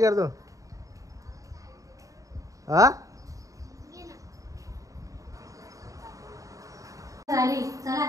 हा झाली चला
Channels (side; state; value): left; late; 0.16 ms